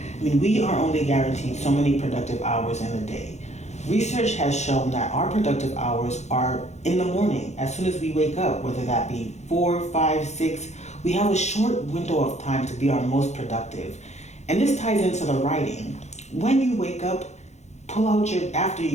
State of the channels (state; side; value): late; right; 0.33 ms